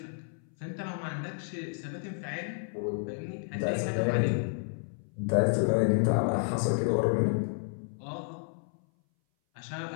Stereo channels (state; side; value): silent; right; 57 dB below the other